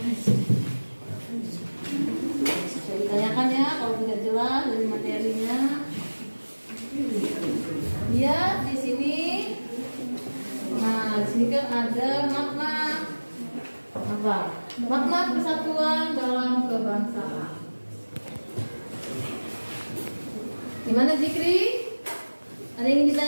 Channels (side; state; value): both; inverted; correlation -1.00